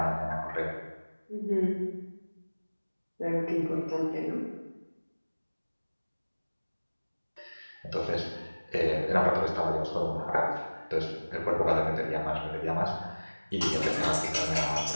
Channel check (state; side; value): inverted; both; correlation -1.00